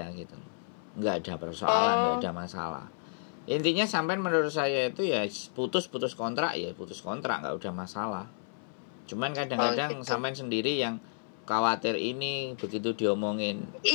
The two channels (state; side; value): silent; right; 57 dB below the other